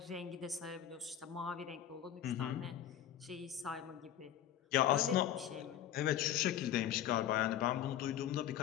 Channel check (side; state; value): right; quieter; 10.9 dB